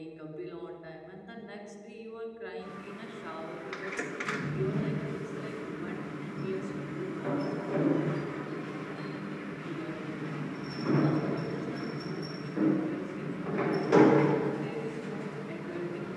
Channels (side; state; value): both; identical; correlation 1.00